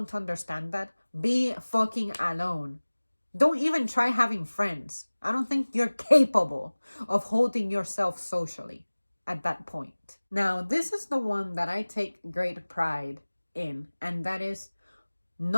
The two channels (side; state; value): both; inverted; correlation -1.00